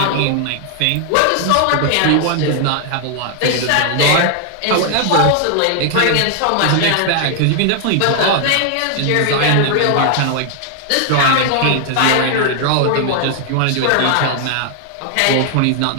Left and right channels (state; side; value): different; both; correlation 0.00